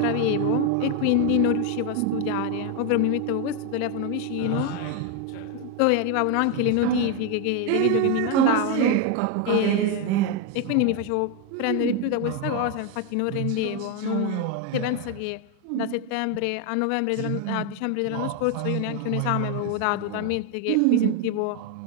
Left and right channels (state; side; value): different; both; correlation 0.01